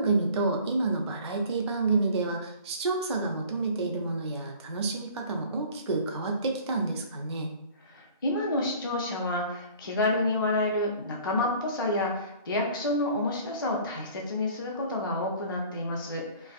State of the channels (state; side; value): inverted; both; correlation -0.48